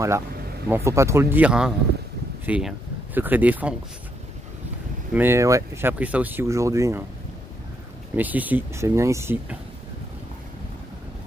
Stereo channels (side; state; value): both; normal; correlation 0.76